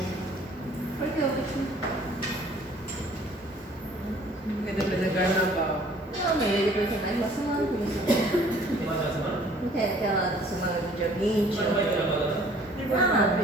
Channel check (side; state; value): both; normal; correlation 0.55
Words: Por que eu vou Porque depois é carnaval. Não, mas ele vai ter mais uma semana por isso. Tem mais uma semana? Não tem aquela semana do dia 20? Mas não vai ter agora, né? Não.